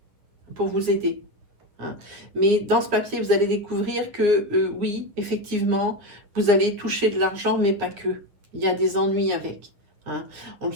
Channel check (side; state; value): left; late; 9.8 ms